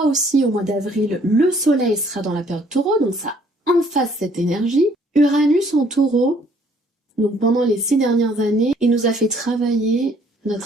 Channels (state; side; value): normal; both; correlation 0.61